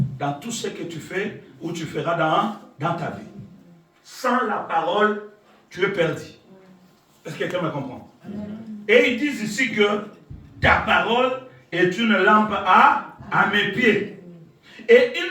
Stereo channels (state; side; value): identical; both; correlation 1.00